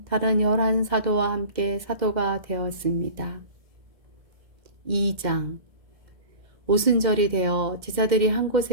다른 11사도와 함께 사도가 되었습니다. 2장 오순절이 되어 제자들이 한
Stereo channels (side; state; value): left; late; 1.7 ms